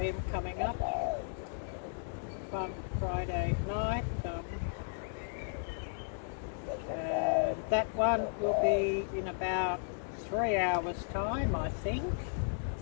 coming up on Friday night, and that one will be in about 3 hours time, I think.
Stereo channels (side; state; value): right; silent; digital silence